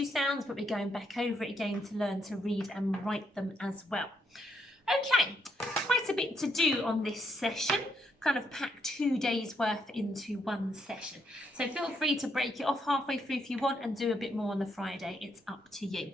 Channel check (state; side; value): normal; both; correlation 0.76